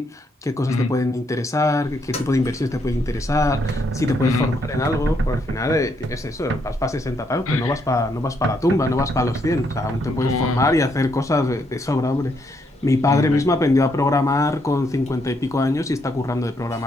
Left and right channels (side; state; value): both; normal; correlation 0.75